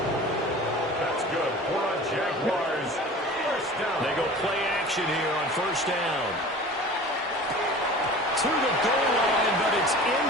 That's good for a Jaguars first down. They go play action here on 1st down. To the goal line, but it's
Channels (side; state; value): both; normal; correlation 0.40